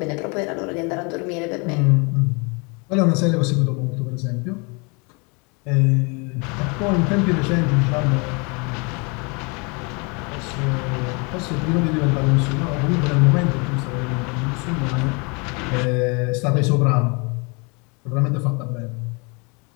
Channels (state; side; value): quieter; right; 31.3 dB